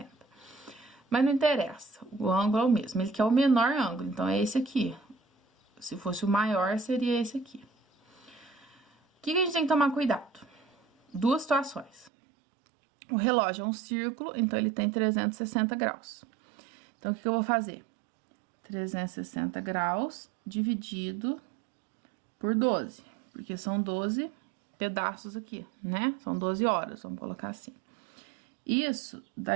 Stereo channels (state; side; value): drops out; left; at 12.1 s